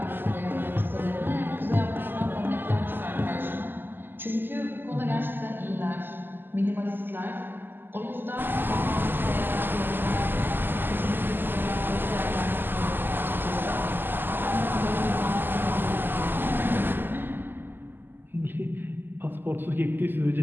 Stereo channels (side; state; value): left; late; 0.094 ms